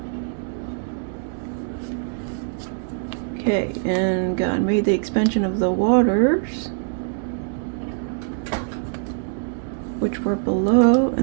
Okay, and God made the expansion of the waters which were below,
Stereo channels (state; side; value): silent; left; digital silence